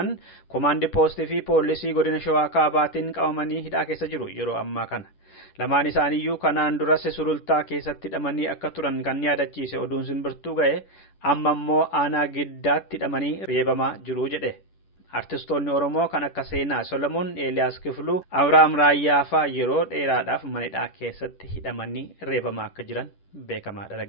komaandi poostii fi poolisii godina Shawaa Kaabaatiin qabamanii hidhaa keessa jiru yeroo ammaa kana. Lamaan isaaniiyyuu kanaan duras sulultaa keessatti hidhamanii akka turan kan yaadachiise oduun Simbirtuu ga'e amma immoo aanaa Giddaatti hidhamanii reebamaa jiru jedhe. Artistoonni Oromoo kan akka Seenaa Solomoon, Eeliyaas Kifluu, Abrahaam Raayyaafaa yeroo dheeraadhaaf mana hidhaa keessatti hidhamanii reebamaa akka jiran beekamaadha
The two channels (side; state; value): right; late; 10 ms